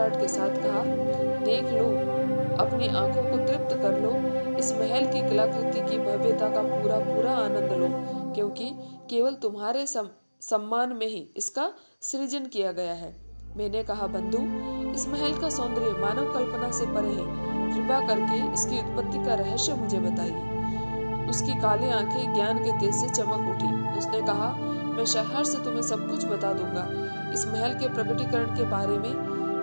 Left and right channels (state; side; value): inverted; both; correlation -1.00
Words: के साथ कहा, देख लो, अपनी आंखों को तृप्त कर लो, इस महल की कलाकृति की भव्यता का पूरा पूरा आनंद लो, क्योंकि केवल तुम्हारे सम्मान में ही इसका सृजन किया गया है। मैंने कहा, बंधु, इस महल का सौंदर्य मानव कल्पना से परे है। कृपा करके इसकी उत्पत्ति का रहस्य मुझे बताइए। उसकी काली आंखें ज्ञान के तेज से चमक उठी। उसने कहा, मैं शहर से तुम्हें सब कुछ बता दूंगा। इस महल के प्रकटीकरण के बारे में